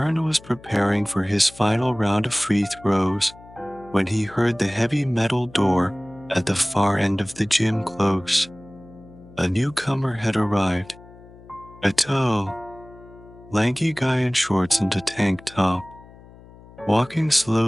was preparing for his final round of free throws when he heard the heavy metal door at the far end of the gym close. A newcomer had arrived. A tall, lanky guy in shorts and a tank top, walking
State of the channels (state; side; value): noise; left; hum, 21 dB below the sound